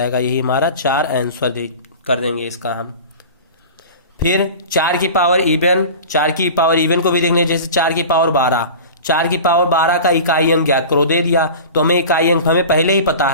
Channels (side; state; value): both; inverted; correlation -0.36